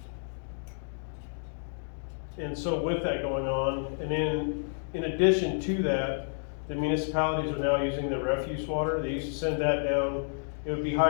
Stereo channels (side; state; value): right; silent; digital silence